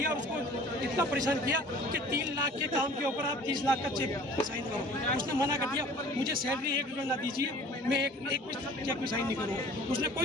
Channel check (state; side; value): normal; both; correlation 0.47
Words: और उसको इतना परेशान किया कि 3 लाख के काम के ऊपर आप 30 लाख का चेक साइन करो। उसने मना कर दिया, मुझे सैलरी 1 रुपया ना दीजिए, मैं एक चेक में साइन नहीं करूँगा। उसने